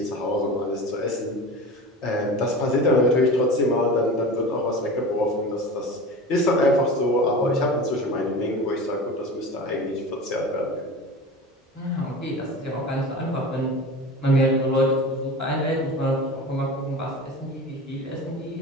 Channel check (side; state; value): both; normal; correlation 0.32